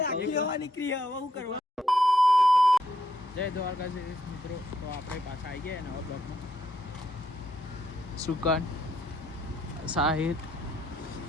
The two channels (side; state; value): both; normal; correlation 0.74